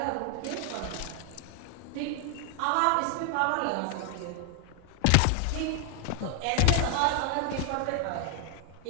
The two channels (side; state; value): both; different; correlation 0.00